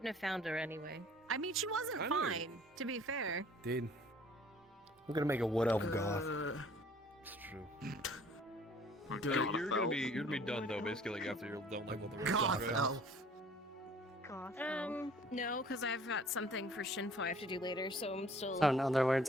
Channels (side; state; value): both; normal; correlation 0.54